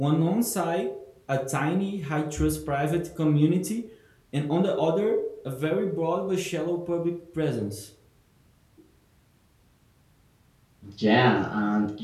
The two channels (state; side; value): identical; both; correlation 1.00